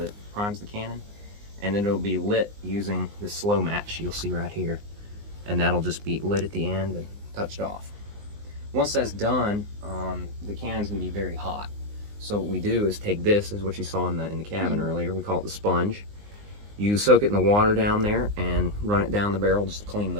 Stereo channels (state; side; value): late; left; 19 ms